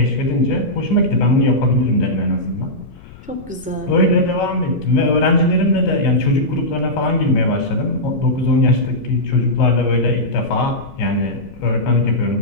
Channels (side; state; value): left; noise; rumble, 20 dB below the sound